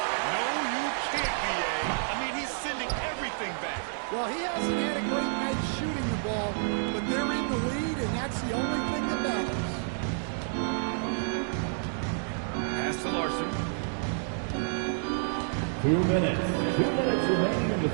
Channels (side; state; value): left; silent; digital silence